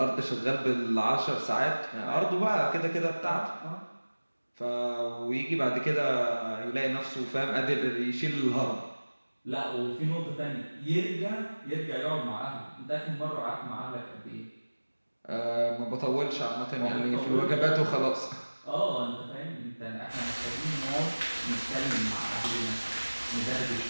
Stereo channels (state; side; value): inverted; both; correlation -1.00